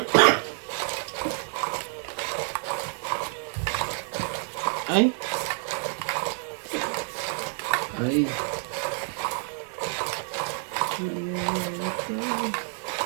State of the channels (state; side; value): silent; left; 59 dB below the other